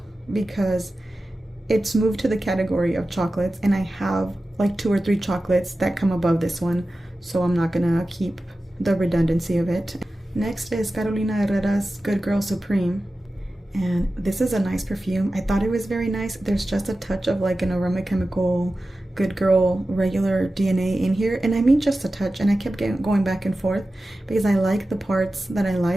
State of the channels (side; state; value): both; normal; correlation 0.94